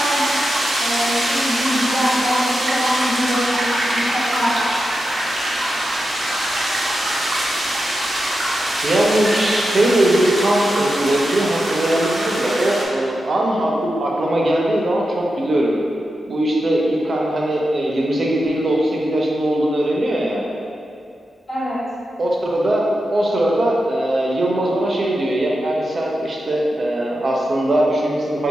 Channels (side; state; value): both; normal; correlation 0.89